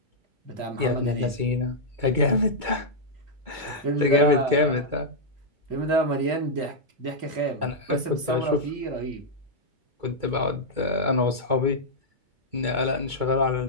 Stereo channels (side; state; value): left; late; 2.2 ms